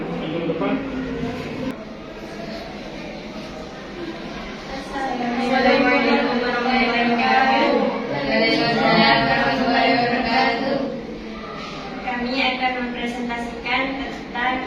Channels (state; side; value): identical; both; correlation 1.00